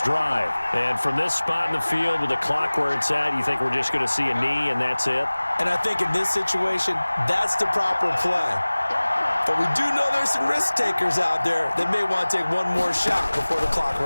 drive. And from this spot in the field with the clock where it's at, you think we're just going to see a knee and that's it? And I think in this situation, that's the proper play. But we do know there's some risk takers out there that may want to take one more shot before the clock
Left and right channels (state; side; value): inverted; both; correlation -1.00